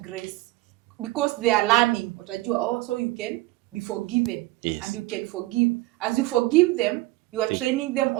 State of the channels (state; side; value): quieter; left; 19.3 dB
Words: because they are learning. Utajua, so you can be forgiven and you can forgive. As you forgive them, you are training them